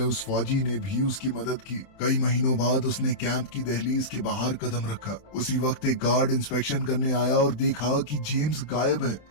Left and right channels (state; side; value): late; right; 28 ms